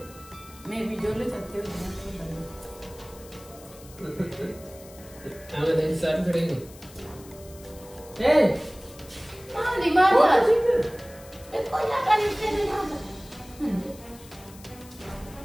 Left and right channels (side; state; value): left; noise; hiss, 21 dB below the sound